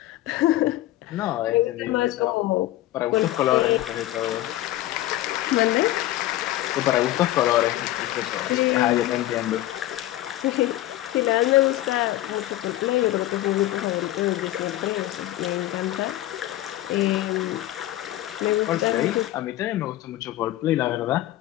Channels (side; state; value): right; quieter; 15.1 dB